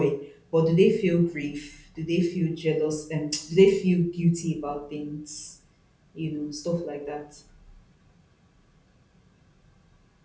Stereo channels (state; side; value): identical; both; correlation 1.00